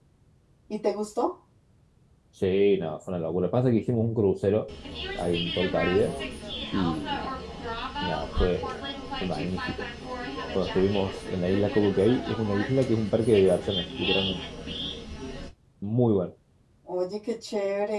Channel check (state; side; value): identical; both; correlation 1.00